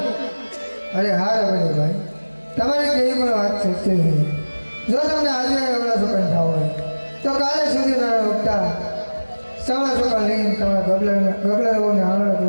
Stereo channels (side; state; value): both; inverted; correlation -1.00